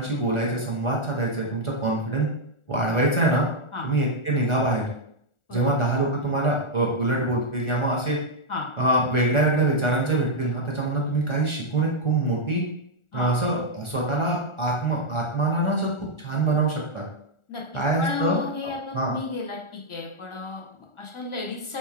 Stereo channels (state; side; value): late; right; 1.4 ms